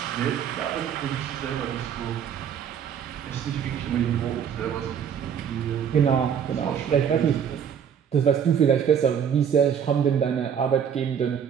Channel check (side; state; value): left; quieter; 8.1 dB